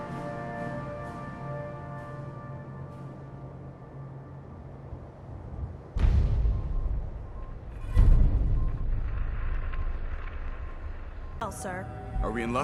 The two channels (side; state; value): both; identical; correlation 1.00